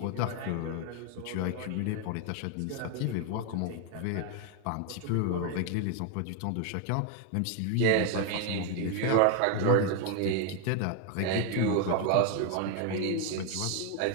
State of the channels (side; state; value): both; different; correlation 0.01